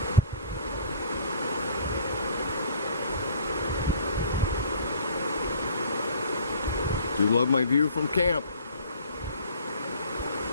Do love my view from camp.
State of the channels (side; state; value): both; inverted; correlation -0.48